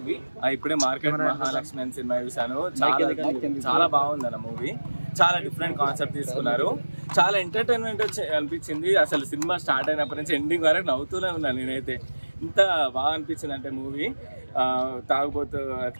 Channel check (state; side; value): inverted; both; correlation -1.00